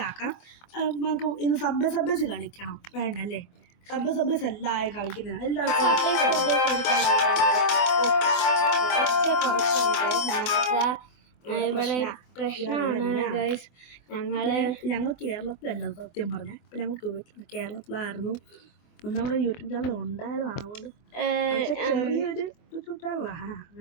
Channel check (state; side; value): late; right; 24 ms